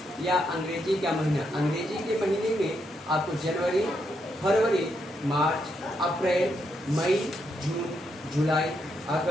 या अंग्रेजी का महीना। अंग्रेजी के महीने में आपको जनवरी, फरवरी, मार्च, अप्रैल, मई, जून, जुलाई,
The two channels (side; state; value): both; normal; correlation 0.79